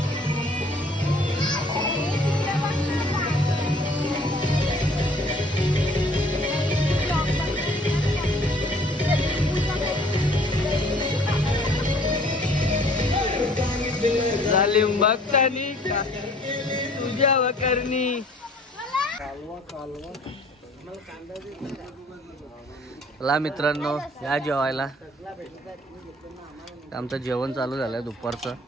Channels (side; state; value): both; normal; correlation 0.55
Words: जालिम भक्तानी तुझ्या करणी ला मित्रांनो या जेवायला आमचं जेवण चालू झालंय दुपारचं